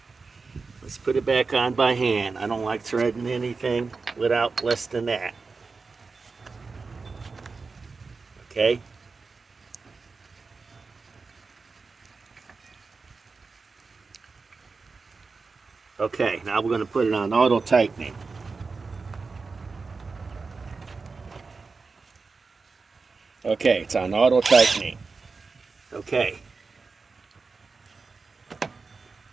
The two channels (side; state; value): left; quieter; 4.4 dB